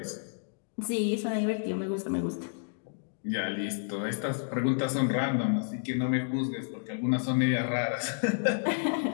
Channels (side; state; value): right; silent; digital silence